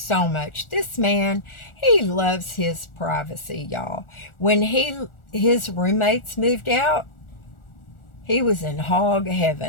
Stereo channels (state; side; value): late; right; 1.4 ms